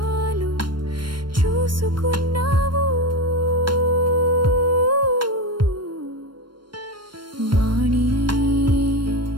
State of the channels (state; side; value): late; left; 0.72 ms